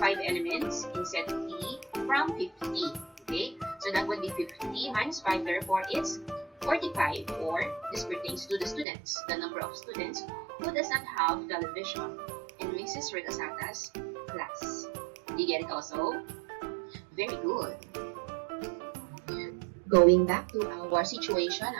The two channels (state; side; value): drops out; left; at 8.8 s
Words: elements in set T from 50. Okay? So that would be 50 minus 5, therefore it's 45, or this pertains to the students, the number of students who does not have television in Mrs. Regasata's class. Do you get it also? Very good. Going back to our situation